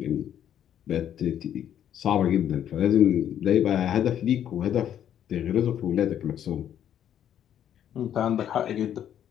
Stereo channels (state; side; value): quieter; right; 10.1 dB